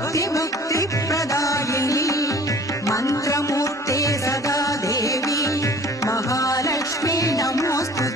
मन्त्रमूर्ते सदा देवी महालक्ष्मी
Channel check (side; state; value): both; normal; correlation 0.48